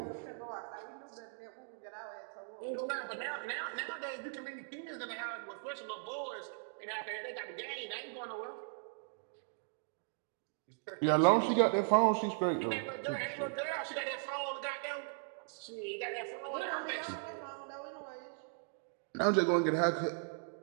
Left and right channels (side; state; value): left; silent; digital silence